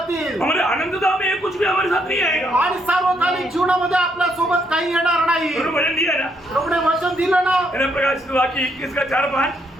हमारे अनंतता में कुछ भी हमारे साथ नहीं आएगा. आणि सार्वकालिक जीवनामध्ये आपल्या सोबत काही येणार नाही. उन्होंने वचन दिया ना, प्रभूने वचन दिलं ना. मैंने प्रकाशित वाक्य 21 का 4-5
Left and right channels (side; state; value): both; normal; correlation 0.74